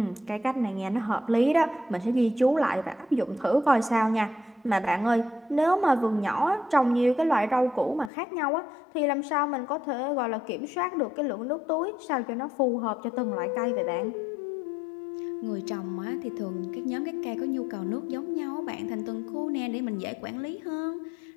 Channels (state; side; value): drops out; right; at 8.1 s